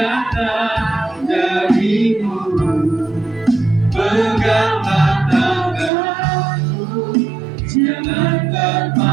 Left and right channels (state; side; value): drops out; left; at 5.9 s